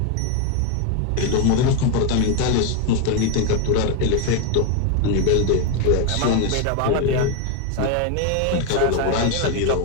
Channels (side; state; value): both; different; correlation 0.01